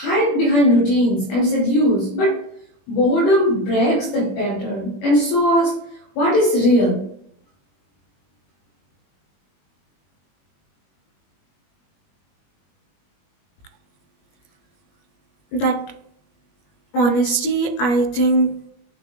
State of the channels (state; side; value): late; right; 21 ms